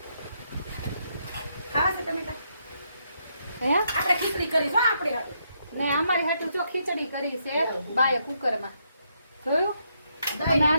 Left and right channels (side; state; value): both; inverted; correlation -0.77